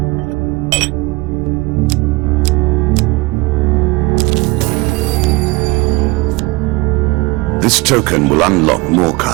This token will unlock more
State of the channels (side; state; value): left; quieter; 23.8 dB